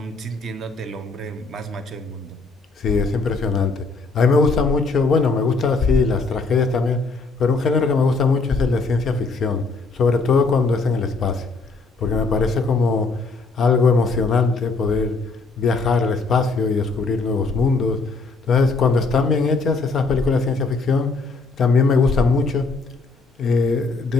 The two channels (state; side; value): quieter; right; 3.9 dB